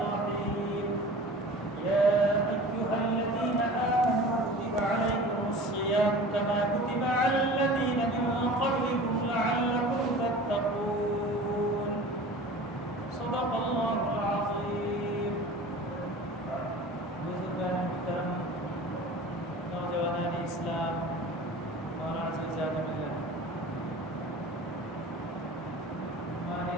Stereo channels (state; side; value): normal; both; correlation 0.39